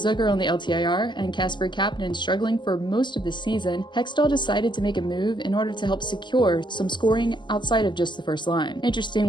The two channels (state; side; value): late; right; 0.22 ms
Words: on the LTIR and Kasper Kapanen struggling for most of the season, Hextall decided to make a move in order to help secure some scoring outside of just the first line.